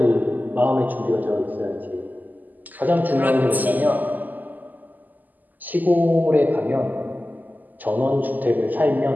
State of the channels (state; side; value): late; left; 0.083 ms